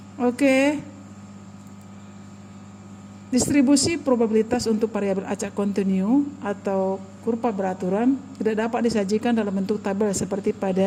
Oke. Distribusi probabilitas untuk variabel acak kontinu atau kurva beraturan tidak dapat disajikan dalam bentuk tabel seperti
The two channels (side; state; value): both; identical; correlation 1.00